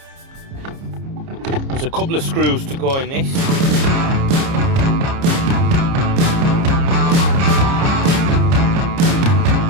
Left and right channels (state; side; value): late; left; 30 ms